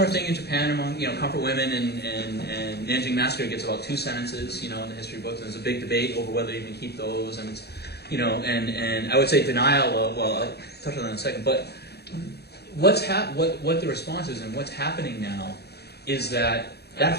thing in Japan among comfort women, and Nanjing Massacre gets about 2 sentences, in the history books, and there's a big debate over whether to even keep those, and it's, and I would say denial of, well, I'll touch on that in a second, but what the response is and what's happening now is that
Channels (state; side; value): late; right; 0.47 ms